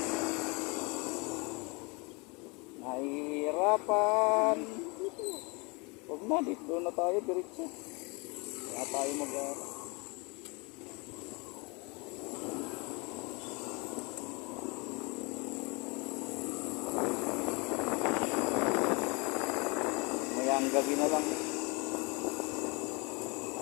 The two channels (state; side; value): quieter; right; 29.2 dB